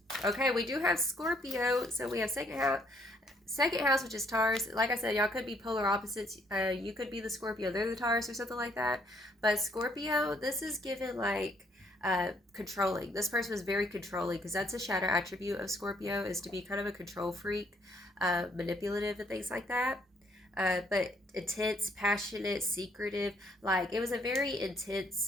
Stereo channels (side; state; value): both; normal; correlation 0.67